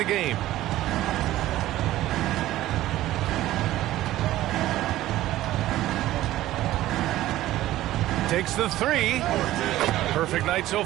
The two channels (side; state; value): left; quieter; 15.0 dB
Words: game. Takes the three. Perfect night so